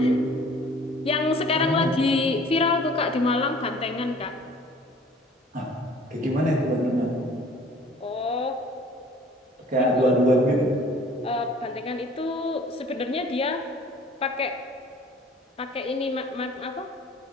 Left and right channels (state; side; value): normal; both; correlation 0.51